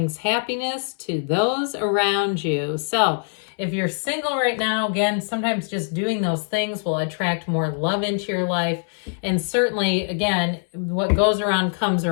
happiness to those around you. So if you're single right now, again, sometimes just doing those things will attract more love into your life. And certainly, again, what goes around comes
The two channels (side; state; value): right; silent; 63 dB below the other